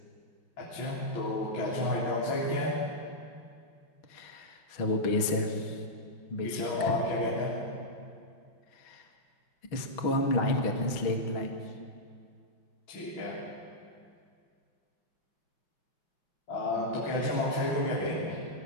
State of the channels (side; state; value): right; late; 6.2 ms